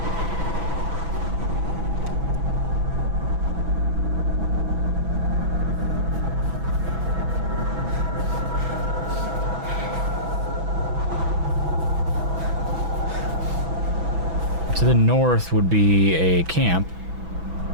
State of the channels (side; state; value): left; late; 6.1 ms